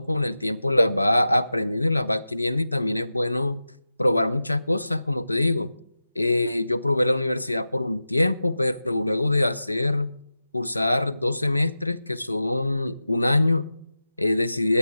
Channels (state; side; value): inverted; both; correlation -0.93